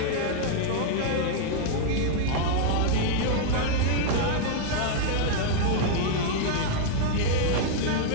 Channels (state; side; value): different; both; correlation -0.01